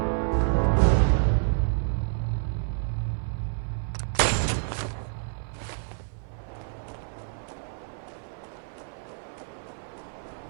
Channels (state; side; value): silent; left; 59 dB below the other